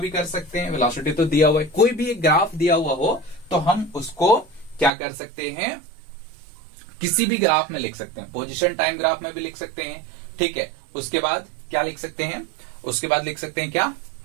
कर सकते हैं। वेलोसिटी तो दिया हुआ है, कोई भी एक ग्राफ दिया हुआ हो तो हम उसको क्या कर सकते हैं, किसी भी ग्राफ में लिख सकते हैं। पोजीशन टाइम ग्राफ में भी लिख सकते हैं, ठीक है। उसके बाद क्या लिख सकते हैं, उसके बाद लिख सकते हैं क्या,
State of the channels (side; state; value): left; drops out; at 4.9 s